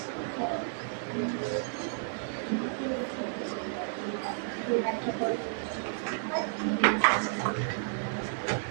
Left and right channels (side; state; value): left; silent; 57 dB below the other